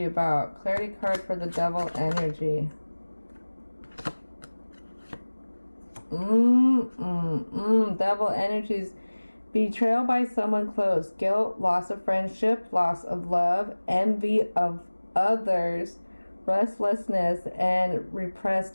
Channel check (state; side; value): inverted; both; correlation -1.00